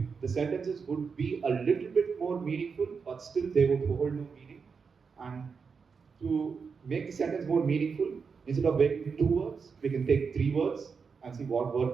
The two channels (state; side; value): quieter; left; 5.5 dB